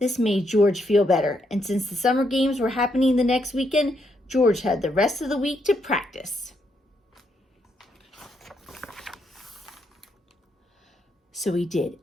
made George feel better, and since the summer games were happening the next weekend, George had the rest of the week to practice. So he did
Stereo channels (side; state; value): both; normal; correlation 0.77